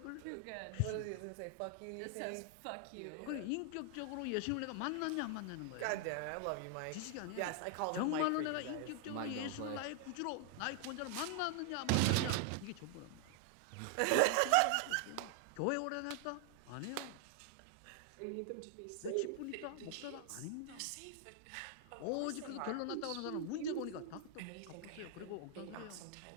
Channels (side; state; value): both; different; correlation 0.00